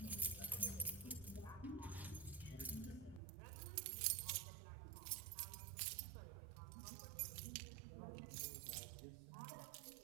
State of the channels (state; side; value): drops out; left; at 3.2 s